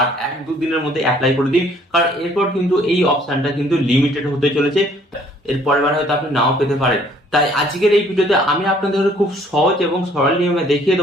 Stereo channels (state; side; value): normal; both; correlation 0.60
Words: 1-2 দিনের মধ্যে অ্যাপ্লাই করে দিন, কারণ এরপর কিন্তু এই অপশনটা কিন্তু লিমিটেড হতে চলেছে। এর পরের বার হয়তো আপনি নাও পেতে পারেন। তাই আজকের এই ভিডিওতে আমি আপনাদের খুব সহজ এবং সরল নিয়মে দেখিয়ে